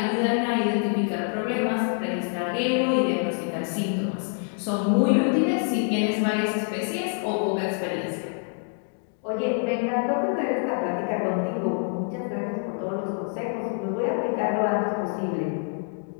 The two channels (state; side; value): silent; right; 56 dB below the other